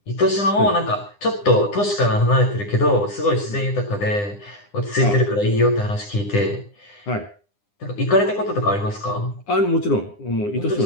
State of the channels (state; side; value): late; right; 9.9 ms